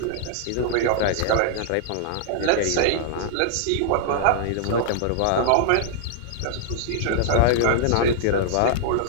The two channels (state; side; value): different; both; correlation -0.01